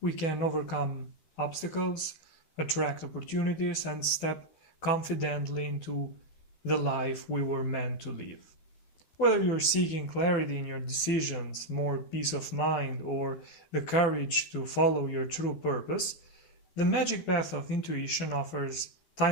can overcome obstacles, attract opportunities, and step confidently into the life we were meant to live. Whether you're seeking clarity in your decisions, more peace of mind, or the courage to follow your true purpose, the magic path of intuition offers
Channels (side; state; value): right; late; 12 ms